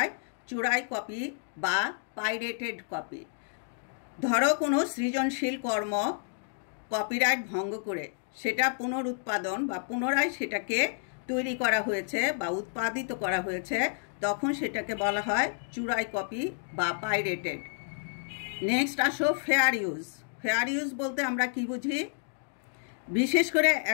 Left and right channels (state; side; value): silent; right; digital silence